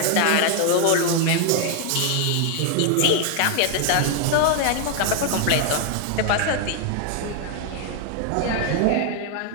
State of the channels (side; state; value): both; different; correlation 0.00